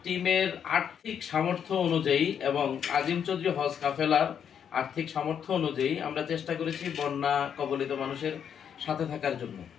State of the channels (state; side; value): quieter; right; 8.2 dB